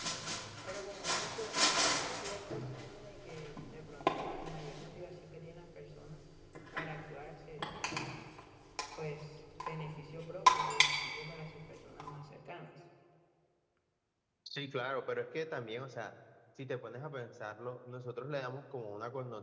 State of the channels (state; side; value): identical; both; correlation 1.00